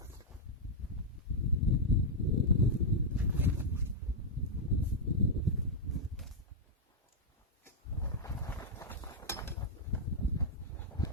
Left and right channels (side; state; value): both; normal; correlation -0.04